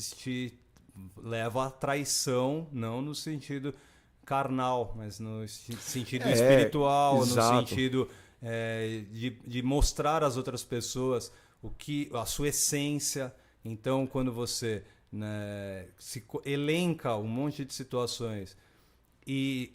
te leva à traição, não no sentido carnal, mas no sentido espiritual, exato. no sentido de mostrar às outras pessoas a sua essência. Então, quando você, né, elenca um monte de situações e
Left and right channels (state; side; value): identical; both; correlation 1.00